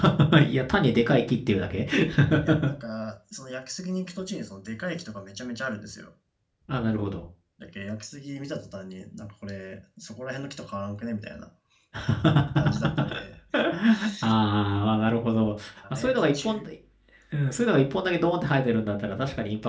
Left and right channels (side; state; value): both; identical; correlation 1.00